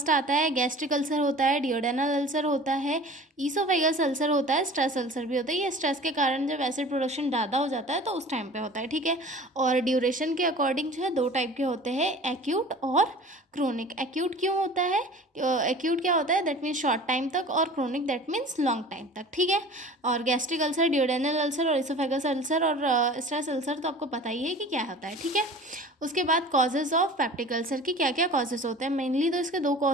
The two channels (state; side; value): normal; both; correlation 0.42